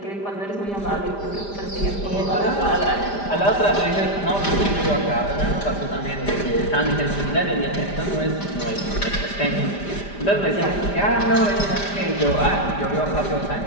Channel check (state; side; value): late; right; 5.0 ms